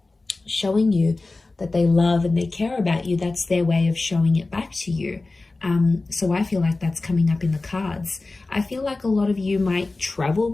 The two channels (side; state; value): right; quieter; 3.4 dB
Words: showing you that they love and they care about you. That's their way of showing it back to you. So I feel like that's coming up in the cards. I feel like a lot of you might travel